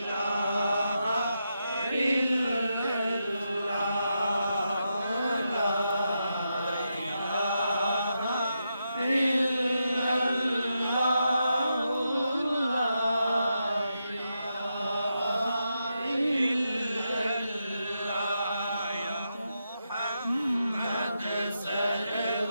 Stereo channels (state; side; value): inverted; both; correlation -0.85